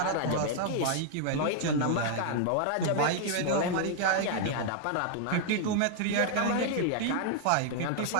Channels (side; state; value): both; different; correlation 0.00